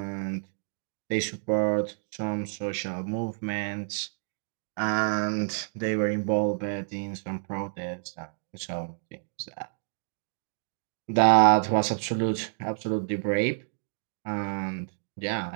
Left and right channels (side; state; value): left; silent; digital silence